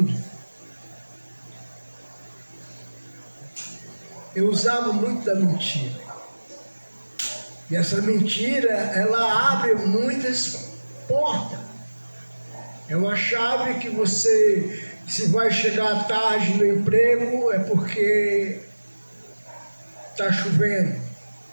eu usava muito da mentira. E essa mentira, ela abre muitas portas. É uma chave que você, se vai chegar tarde no emprego, é porque está chovendo.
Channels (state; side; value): inverted; both; correlation -1.00